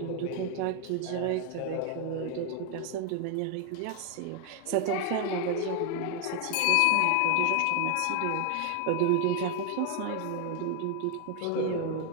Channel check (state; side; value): different; both; correlation 0.01